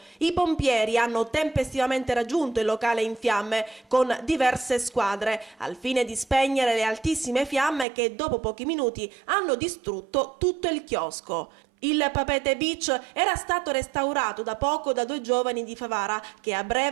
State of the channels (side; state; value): left; drops out; at 7.9 s